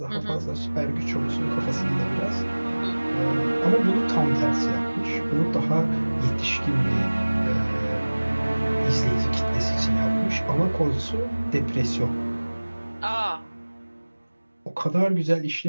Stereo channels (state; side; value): inverted; both; correlation -1.00